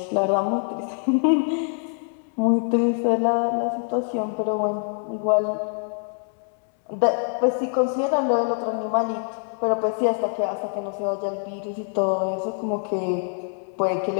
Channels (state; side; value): silent; right; 57 dB below the other